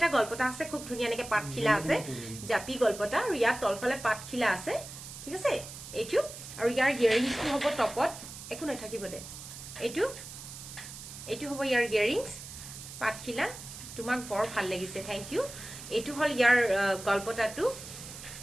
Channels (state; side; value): noise; right; hiss, 12 dB below the sound